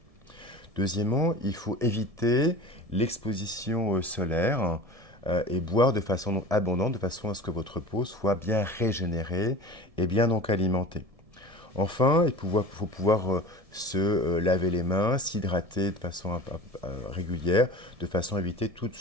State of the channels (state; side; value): late; left; 1.7 ms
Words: Deuxièmement, il faut éviter l'exposition solaire et boire de façon abondante, de façon à ce que votre peau soit bien régénérée et bien donc alimentée. Enfin, il faut pouvoir se laver les mains, s'hydrater de façon régulière, de façon à éviter toute